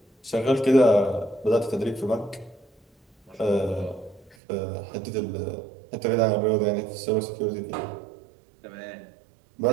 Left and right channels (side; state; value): left; drops out; at 4.4 s